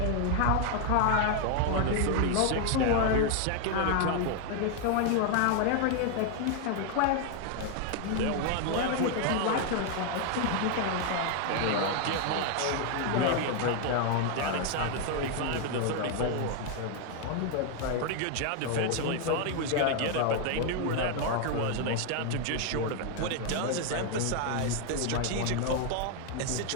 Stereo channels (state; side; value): different; both; correlation 0.01